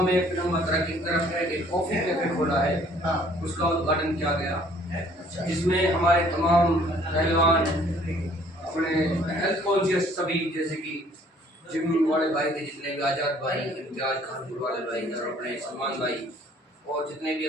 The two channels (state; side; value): normal; both; correlation 0.58